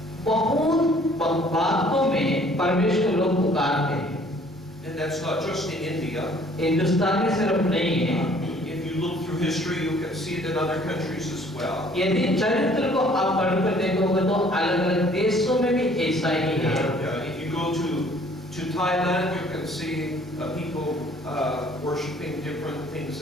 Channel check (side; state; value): both; normal; correlation 0.57